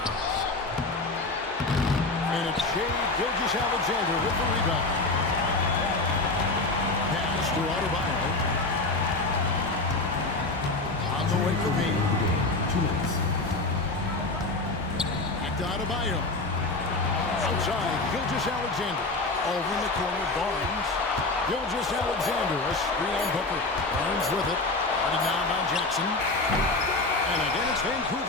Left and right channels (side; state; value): right; quieter; 3.2 dB